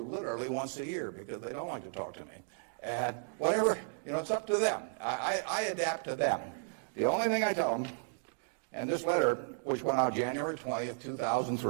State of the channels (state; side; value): silent; left; digital silence